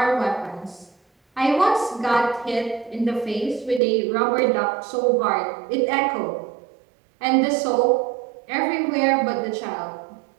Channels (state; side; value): drops out; left; at 3.8 s